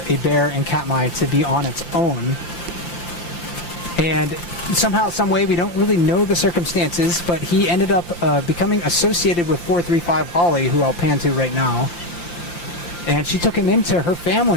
a bear in Katmai to be on its own. And somehow, some way, we don't really know the circumstances, but he ended up becoming associated with 435 Holly, who I'll pan to right now. And she took him into her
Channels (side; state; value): right; late; 5.8 ms